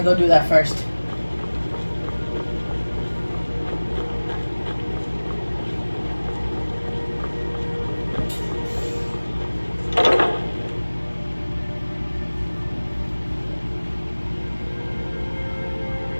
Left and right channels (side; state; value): both; inverted; correlation -1.00